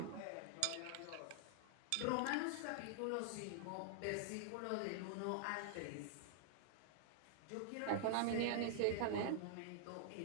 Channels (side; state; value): both; different; correlation -0.01